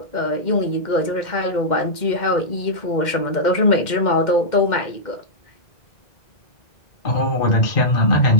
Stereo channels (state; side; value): late; right; 2.1 ms